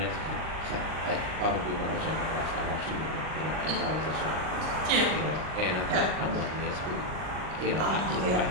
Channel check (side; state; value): left; late; 39 ms